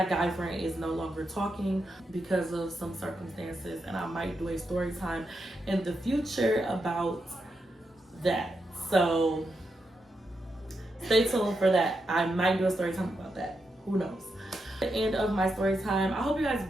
guy friend is no longer talking because of some circumstances. And I might do a story time in the future about that. So stay tuned for that. I might do a story time about that. Who knows? The end of my story time. I hope you guys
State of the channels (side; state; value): both; normal; correlation 0.85